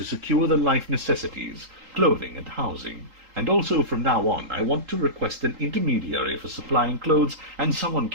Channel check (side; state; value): left; late; 3.8 ms